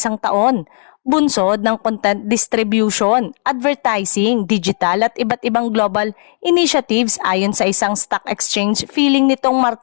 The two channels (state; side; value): silent; right; digital silence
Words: taon. Bunsod ng content distribution, advertising, digital at iba't ibang global initiatives ayon sa isang stock exchange filing nitong